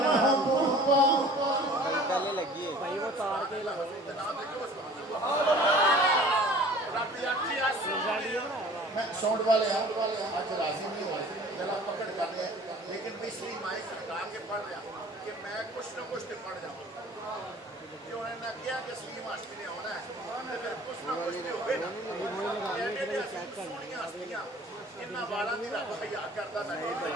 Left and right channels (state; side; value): normal; both; correlation 0.47